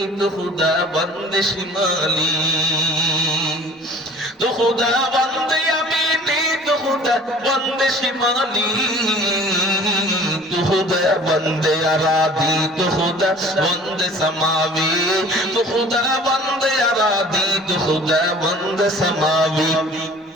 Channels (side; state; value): both; normal; correlation 0.47